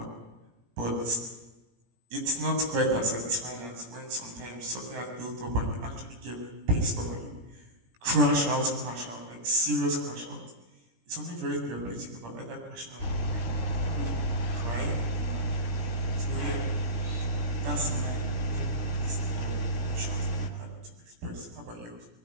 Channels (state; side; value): late; left; 17 ms